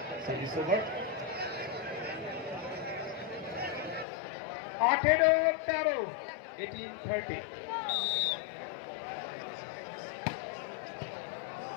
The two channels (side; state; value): right; drops out; at 4.0 s